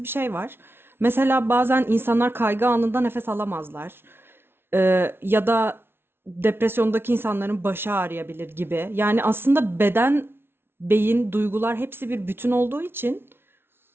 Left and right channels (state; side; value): late; left; 0.11 ms